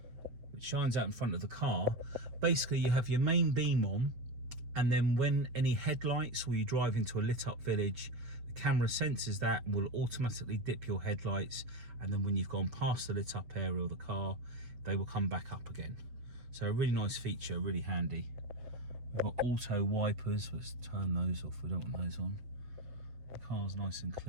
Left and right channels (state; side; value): late; left; 7.4 ms